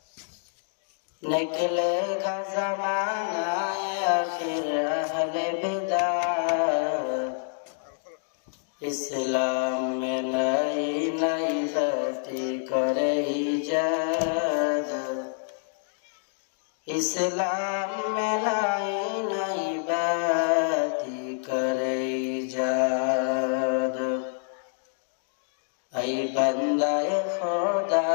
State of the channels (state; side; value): silent; right; digital silence